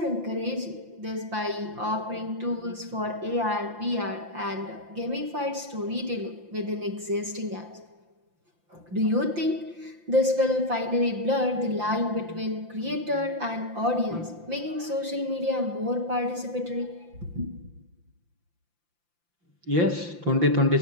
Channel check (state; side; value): late; left; 5.8 ms